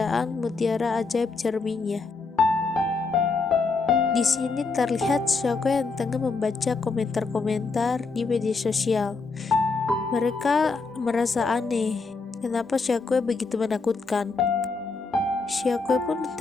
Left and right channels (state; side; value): quieter; right; 4.2 dB